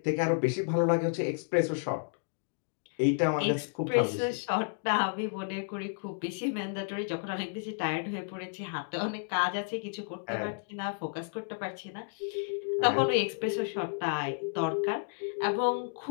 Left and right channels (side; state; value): right; silent; digital silence